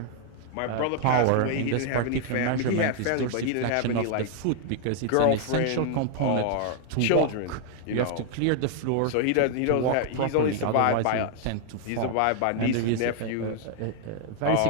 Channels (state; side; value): different; both; correlation 0.00